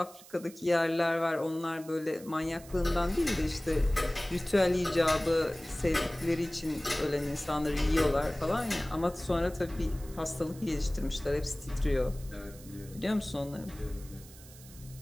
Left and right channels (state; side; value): noise; right; hiss, 20 dB below the sound